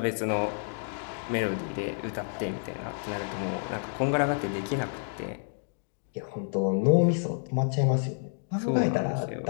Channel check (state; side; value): silent; right; 58 dB below the other